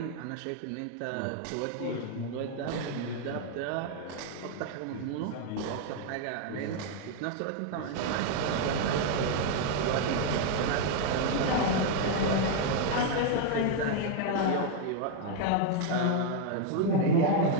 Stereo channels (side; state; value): both; different; correlation 0.00